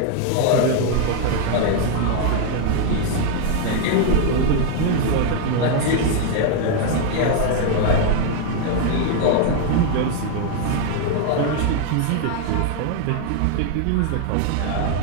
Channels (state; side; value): different; both; correlation 0.00